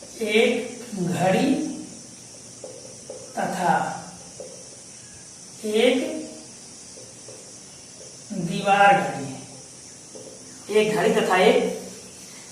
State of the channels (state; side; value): identical; both; correlation 1.00